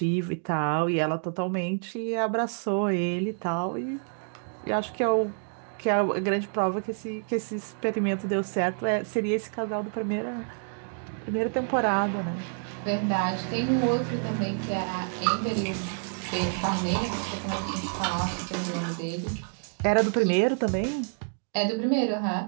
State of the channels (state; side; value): silent; left; 59 dB below the other